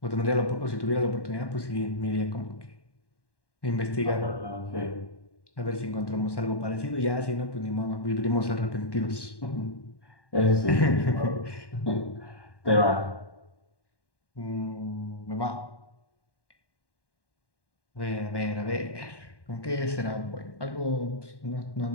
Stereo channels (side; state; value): right; late; 1.1 ms